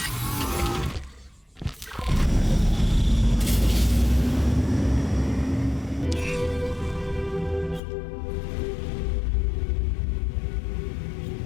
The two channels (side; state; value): right; drops out; at 7.8 s